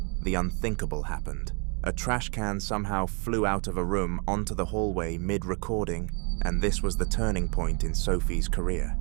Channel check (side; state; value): left; quieter; 36.2 dB